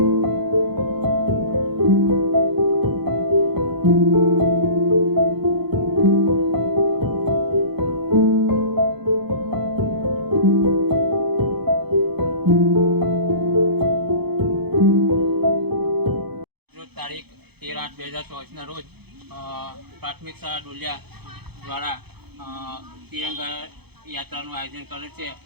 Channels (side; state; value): left; late; 0.98 ms